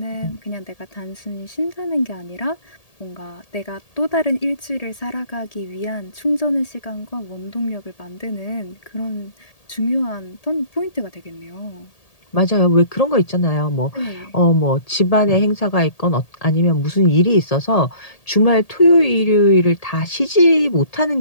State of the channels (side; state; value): right; late; 1.8 ms